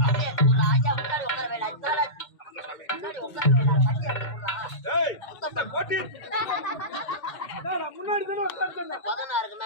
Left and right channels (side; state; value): right; late; 2.1 ms